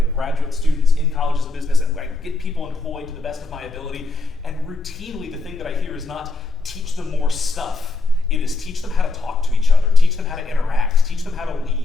graduate students in colleges of business, and I get people employed to the best of my ability, and routinely the thing that I hear is not teach them more stuff. It is teach them how to talk to each other, teach them how to interact, teach them how to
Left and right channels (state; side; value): quieter; right; 3.5 dB